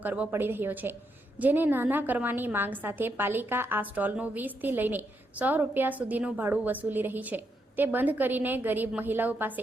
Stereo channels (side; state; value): both; normal; correlation 0.80